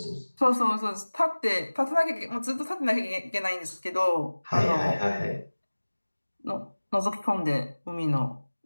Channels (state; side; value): inverted; both; correlation -1.00